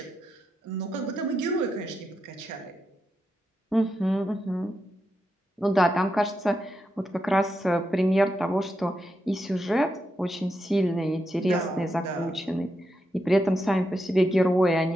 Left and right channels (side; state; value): both; normal; correlation 0.85